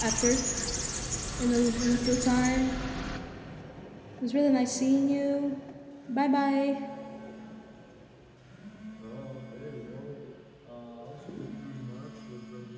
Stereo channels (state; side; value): identical; both; correlation 1.00